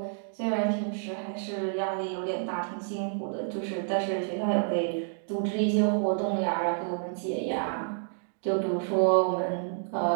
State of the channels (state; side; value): silent; left; digital silence